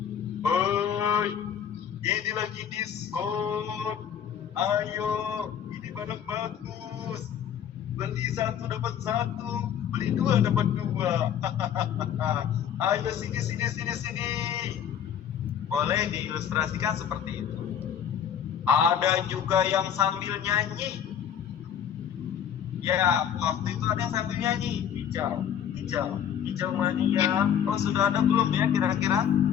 Hoi, ini lagi diskon. Ayo, ini barang bagus. Beli satu dapat satu, beli dua dapat dua. Ayo sini. Boleh diilustrasikan seperti itu. Ada juga yang sambil nyanyi. Ya, waktu itu ada yang sambil nyanyi. Hijau mania. Oh, sudah ada belum ya kira-kira?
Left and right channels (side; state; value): right; quieter; 8.9 dB